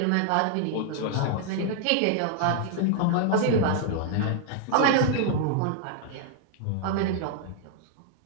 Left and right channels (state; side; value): different; both; correlation -0.01